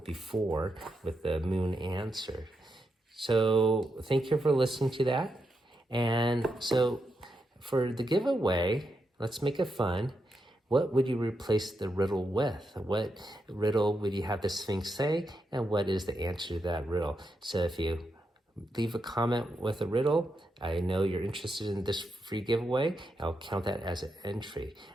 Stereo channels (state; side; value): normal; both; correlation 0.84